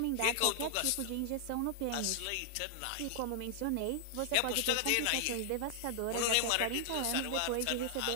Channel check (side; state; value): both; different; correlation -0.01